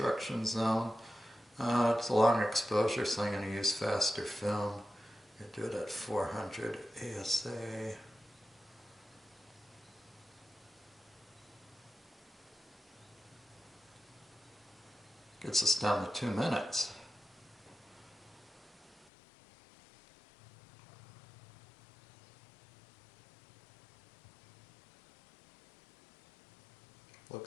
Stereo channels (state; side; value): drops out; right; at 19.1 s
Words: zone. It's a long exposure, so I'm going to use faster film. I'm going to do it at 400 ASA. Gets us down to 2 minutes.